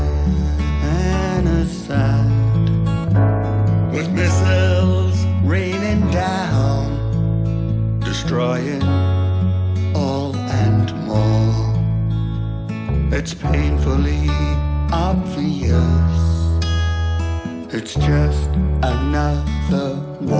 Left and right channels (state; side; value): identical; both; correlation 1.00